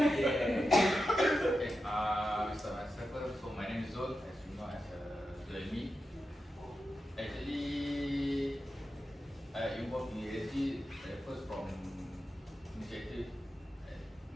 Okay, we start myself first. So my name is Zul, as you know, as Zulmi. Actually, I involved in ESG first from initiative,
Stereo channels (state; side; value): normal; both; correlation 0.90